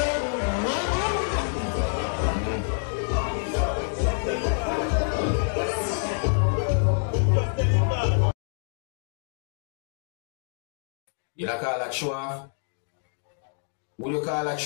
You don't call that show off? Would you call that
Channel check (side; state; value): right; silent; digital silence